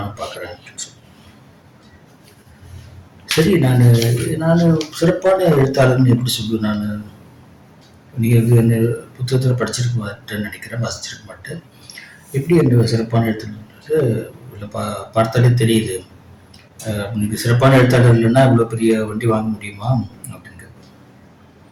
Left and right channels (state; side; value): identical; both; correlation 1.00